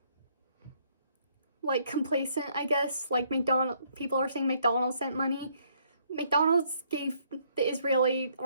complacent, I guess. Like people are saying McDonald's sent money. McDonald's gave the Israeli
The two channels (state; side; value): inverted; both; correlation -0.68